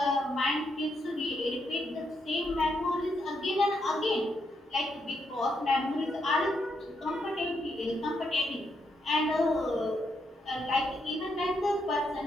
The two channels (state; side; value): normal; both; correlation 0.79